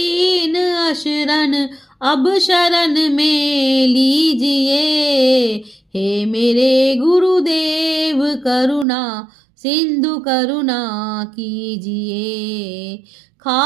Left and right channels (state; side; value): drops out; left; at 8.8 s